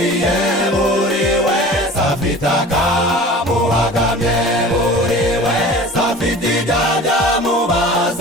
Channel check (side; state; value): both; normal; correlation 0.40